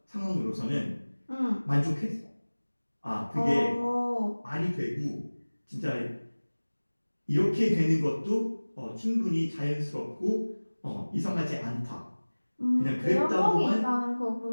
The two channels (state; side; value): inverted; both; correlation -1.00